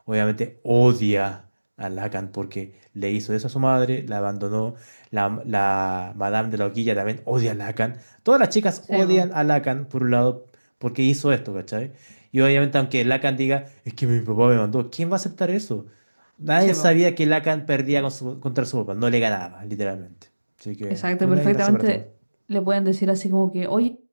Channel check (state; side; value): inverted; both; correlation -1.00